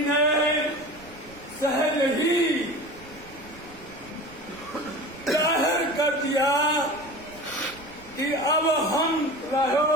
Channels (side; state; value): right; noise; rumble, 22 dB below the sound